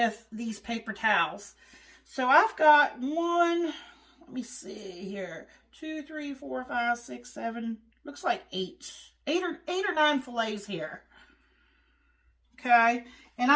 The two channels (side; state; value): both; identical; correlation 1.00